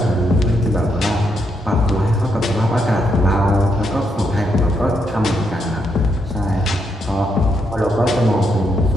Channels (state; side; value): normal; both; correlation 0.79